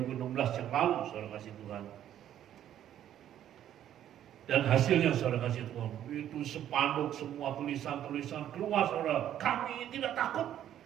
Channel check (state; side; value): quieter; left; 11.1 dB